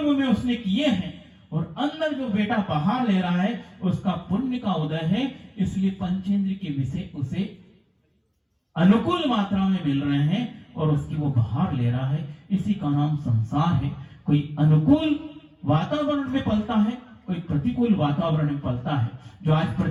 में उसने किए हैं, और अंदर जो बेटा बाहर ले रहा है उसका पुण्य का उदय है। इसलिए पंचेंद्र के विषय उसे अनुकूल मात्रा में मिल रहे हैं और उसकी वो बाहर ले रहा है। इसी का नाम संसार है। कोई अनुकूल वातावरण में पलता है, कोई प्रतिकूल वातावरण में पलता है। जो आज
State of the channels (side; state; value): both; identical; correlation 1.00